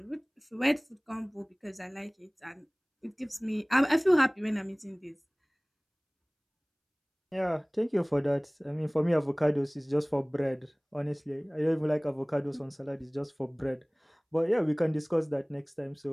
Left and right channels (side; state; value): both; identical; correlation 1.00